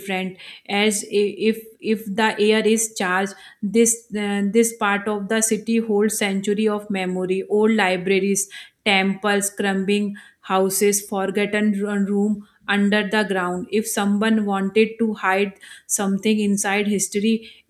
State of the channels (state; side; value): identical; both; correlation 1.00